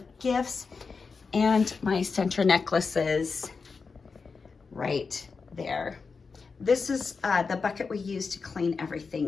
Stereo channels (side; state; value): right; quieter; 4.9 dB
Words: gifts and my center necklaces right there. This is the bucket we use to clean